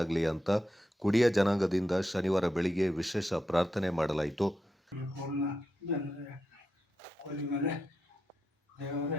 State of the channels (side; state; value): both; normal; correlation 0.86